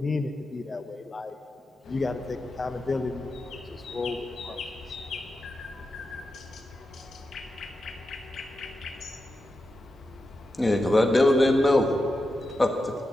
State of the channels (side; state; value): both; normal; correlation 0.89